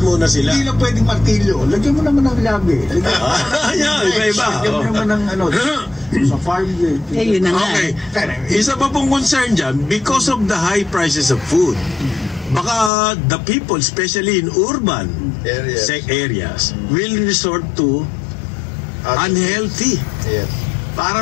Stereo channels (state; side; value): drops out; right; at 12.9 s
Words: muna sila. Hindi lang pwedeng martilyo. Lagyan mo naman ng labi. Iba-iba. Lagyan mo naman ng sa farm gate. Yun na nga. Okay. Isa pa pong concern dyan, because of the high prices of food, baka the people, especially in urban areas, will resort to unhealthy. Yes.